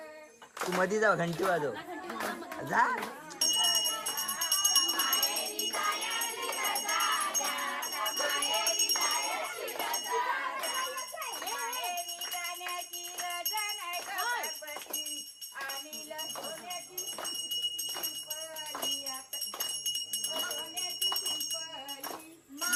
तू मध्ये जा घंटी वाजव जा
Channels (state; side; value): identical; both; correlation 1.00